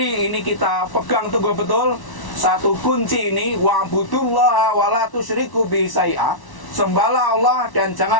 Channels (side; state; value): right; late; 1.1 ms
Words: ini kita pegang teguh betul satu kunci ini, wa'budullaha wa la tusyriku bihi syai'a. Sembahlah Allah dan